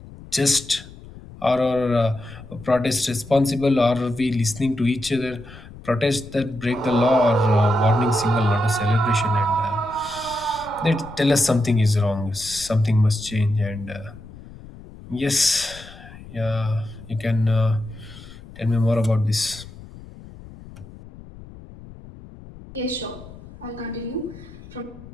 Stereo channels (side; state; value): left; noise; rumble, 18 dB below the sound